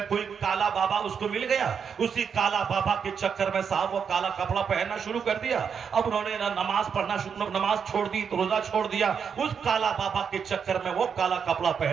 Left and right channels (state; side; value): quieter; left; 6.8 dB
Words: کوئی کالا بابا اس کو مل گیا. اسی کالا بابا کے چکر میں صاحب وہ کالا کپڑا پہننا شروع کر دیا. اب انہوں نے نماز پڑھنا نماز چھوڑ دی, روزہ چھوڑ دیا. اس کالا بابا کے چکر میں وہ کالا کپڑا